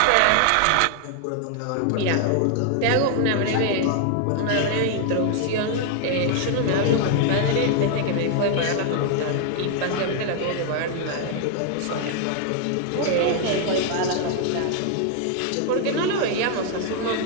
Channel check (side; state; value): both; different; correlation 0.00